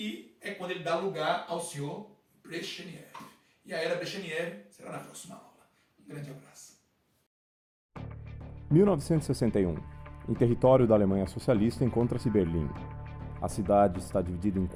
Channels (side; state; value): both; identical; correlation 1.00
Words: é quando ele dá lugar ao senhor Brezhnev. E a era Brezhnev será na próxima aula. Um grande abraço. 1961. Em território da Alemanha Socialista encontra-se Berlim. A cidade está dividida em